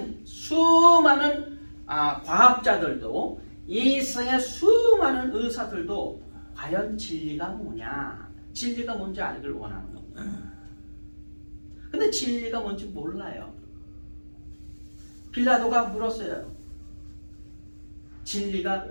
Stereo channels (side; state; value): both; inverted; correlation -1.00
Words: 수많은 과학자들도 이 세상의 수많은 의사들도 과연 진리가 뭐냐, 진리가 뭔지 알기를 원하는 겁니다. 근데 진리가 뭔지 몰라요. 빌라도가 물었어요. 진리가